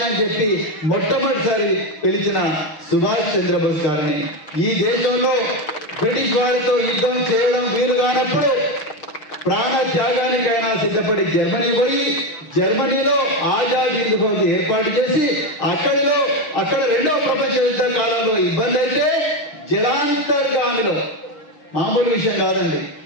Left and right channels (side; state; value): right; late; 6.4 ms